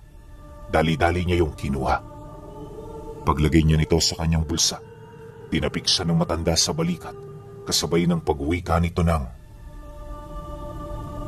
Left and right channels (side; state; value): both; identical; correlation 1.00